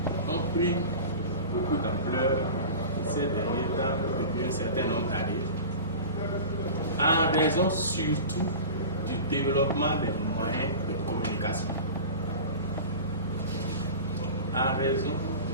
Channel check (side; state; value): both; inverted; correlation -0.34